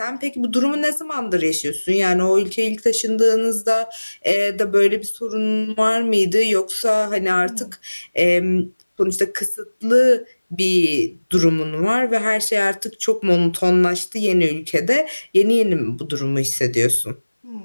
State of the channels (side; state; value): both; inverted; correlation -1.00